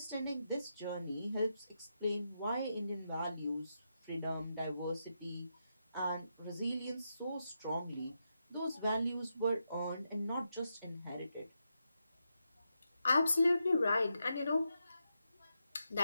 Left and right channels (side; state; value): both; inverted; correlation -0.85